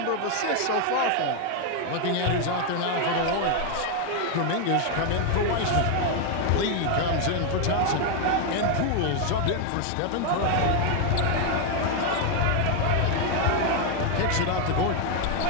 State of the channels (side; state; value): both; different; correlation 0.01